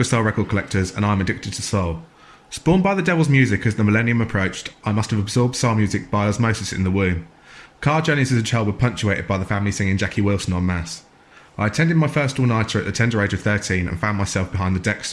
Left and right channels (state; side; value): identical; both; correlation 1.00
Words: soul record collectors and I'm addicted to soul. Spawned by the devil's music as the millennium approached, I must have absorbed soul music by osmosis in the womb. Car journeys as a child were punctuated by the family singing Jackie Wilson en masse. I attended my first all-nighter at the tender age of 13 and found myself behind the deck